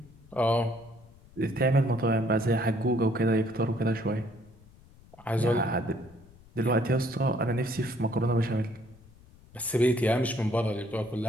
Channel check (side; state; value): left; noise; rumble, 24 dB below the sound